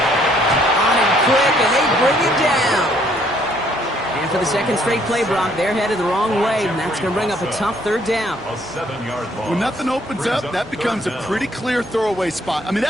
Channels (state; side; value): normal; both; correlation 0.65